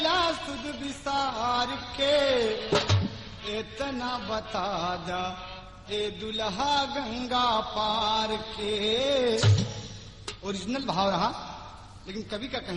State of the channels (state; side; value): identical; both; correlation 1.00